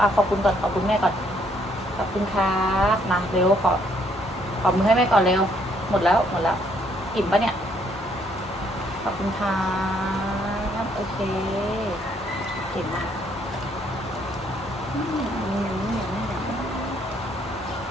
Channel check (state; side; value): normal; both; correlation 0.68